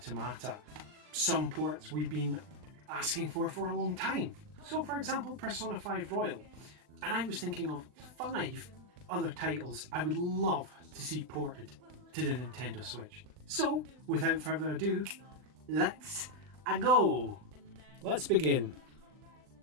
Some ports we've been asking for a long time. So for example, Persona 5 Royal. And I was thinking of 5 other titles I would love to see ported to the Nintendo Switch. So, without further ado, let's go! Let's begin.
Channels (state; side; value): late; left; 39 ms